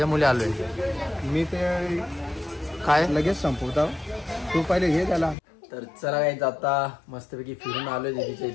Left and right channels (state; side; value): drops out; right; at 5.4 s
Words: मुले आलोय. मी ते काय लगेच संपवता. तू पहिले घे त्याला. तर चला काय आता मस्तपैकी फिरून आलोय दीदीच्या